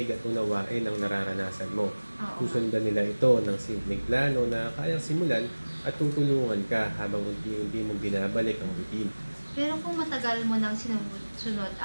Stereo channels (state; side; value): inverted; both; correlation -1.00